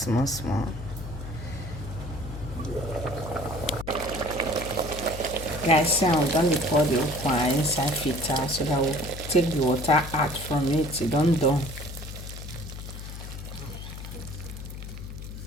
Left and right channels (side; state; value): left; noise; hum, 10 dB below the sound